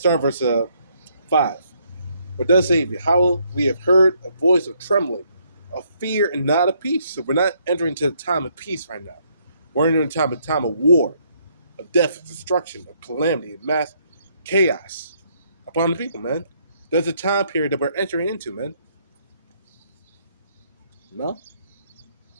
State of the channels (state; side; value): inverted; both; correlation -0.70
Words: verse 5. What does say, "How we have heard a voice of trembling, of fear and not of peace." So we're not entering into a time of peace right now. We're entering into a time of war, of death, of destruction, of calamity, of mass chaos upon the people, man. There's a time period that we're entering into, man. No?